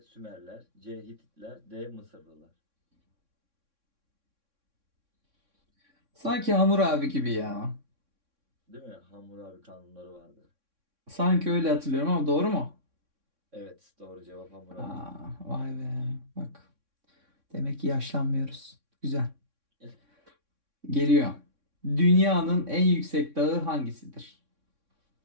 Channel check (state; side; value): late; left; 3.6 ms